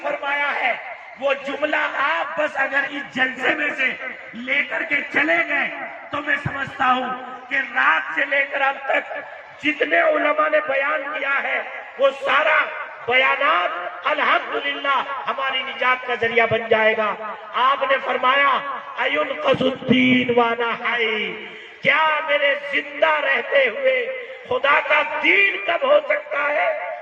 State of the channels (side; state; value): both; identical; correlation 1.00